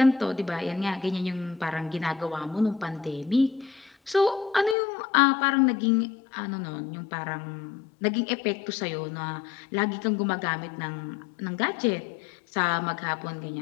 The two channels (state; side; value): drops out; right; at 4.8 s